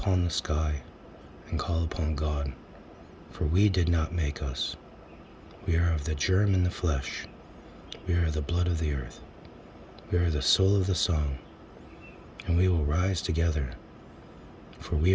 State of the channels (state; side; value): identical; both; correlation 1.00